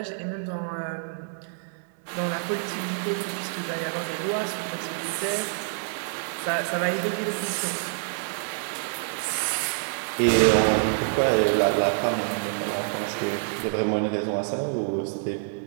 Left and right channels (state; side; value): silent; left; digital silence